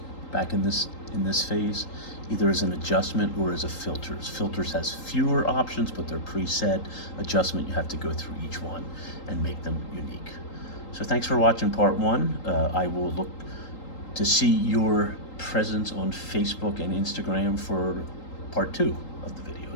back in this phase, either as an adjustment or as a filters. Filters has fewer options, but they're preset. Adjustment, you have to go through each one and make them unique. So thanks for watching part one. I will look to see your presence on Facebook and Instagram for part two of the video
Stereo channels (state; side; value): late; right; 3.8 ms